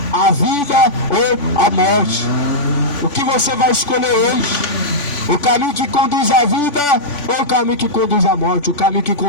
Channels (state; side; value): late; right; 3.5 ms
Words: a vida ou a morte. O que você vai escolher hoje? O caminho que conduz à vida ou o caminho que conduz à morte? O caminho que